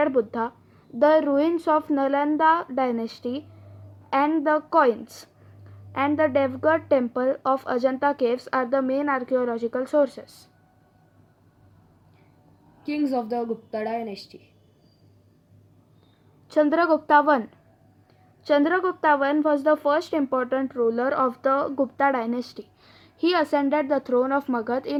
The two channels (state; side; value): identical; both; correlation 1.00